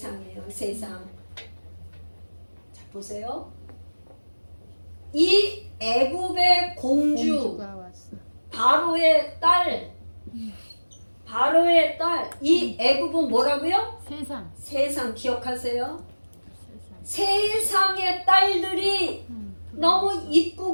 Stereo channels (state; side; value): inverted; both; correlation -1.00